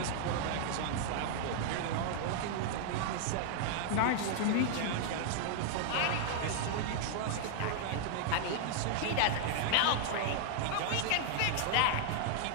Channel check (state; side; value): different; both; correlation 0.00